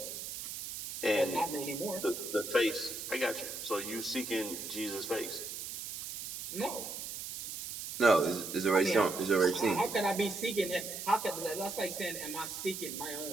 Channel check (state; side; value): noise; right; hiss, 7 dB below the sound